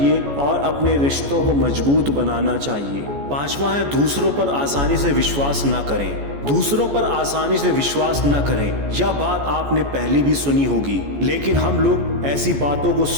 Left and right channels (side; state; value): left; late; 14 ms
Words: और अपने रिश्तों को मजबूत बनाना चाहिए। पांचवा है दूसरों पर आसानी से विश्वास न करें। दूसरों पर आसानी से विश्वास न करें। यह बात आपने पहले भी सुनी होगी, लेकिन हम लोग ऐसी बातों को